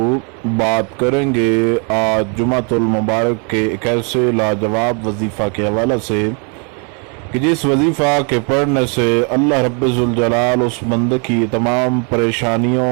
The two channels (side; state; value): left; quieter; 37.5 dB